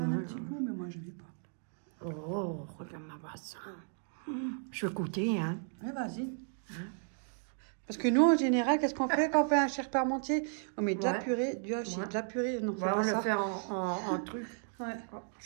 un petit goût, mais moi, je ne vais pas. Oh, regarde ma bassin. Je vais goûter, hein. Ouais, vas-y. Parce que nous, en général, qu'est-ce qu'on fait quand on fait un chair parmentier? On met de la purée, du hachis, de la purée. Non, c'est On pas le ça. fait en truc. Ouais.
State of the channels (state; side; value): silent; left; 55 dB below the other